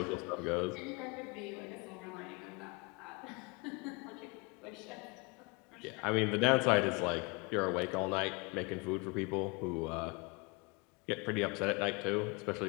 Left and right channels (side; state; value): right; quieter; 29.3 dB